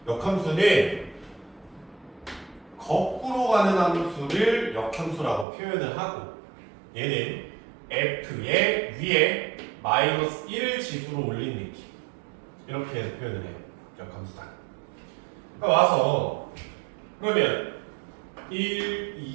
역함수는 거꾸로 가는 함수를 역함수라고 표현을 하고 얘는 f의 위에 마이너스 1을 지수로 올린 느낌 이렇게 해서 표현을 해요. 역함수다. 그러니까 와서 그러면 1,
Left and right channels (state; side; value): drops out; left; at 5.5 s